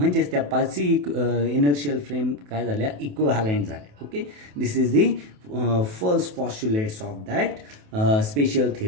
त्या 5 इनर्शियल फ्रेम काय झाल्या, इक्विव्हॅलंट झाल्या. Okay, this is the first postulates of that special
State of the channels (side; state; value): left; late; 28 ms